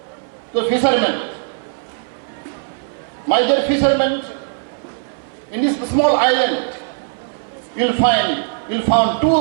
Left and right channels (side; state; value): left; silent; 60 dB below the other